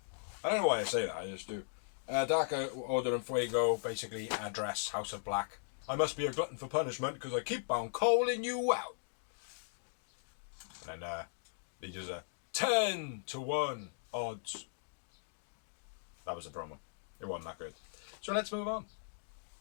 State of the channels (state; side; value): silent; right; digital silence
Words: I don't know why I say that, I just do. Dark Order and Fuego basically address House of Black. I must be a glutton for punishment because I keep on calling you out. And then he does a 10-1 odds. That was the promo. It wasn't that good. So let's move on.